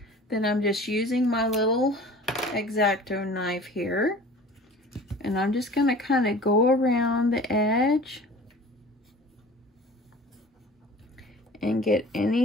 Then I'm just using my little X-Acto knife here, and I'm just going to kind of go around the edge and get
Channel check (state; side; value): normal; both; correlation 0.43